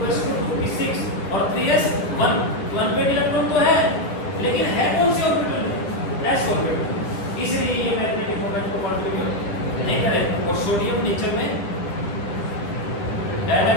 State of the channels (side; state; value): right; late; 10 ms